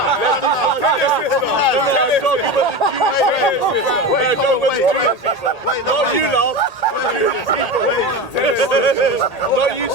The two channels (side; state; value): right; late; 1.8 ms